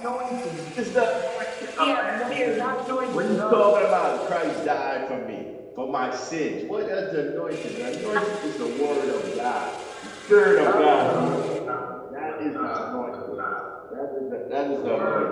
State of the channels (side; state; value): both; identical; correlation 1.00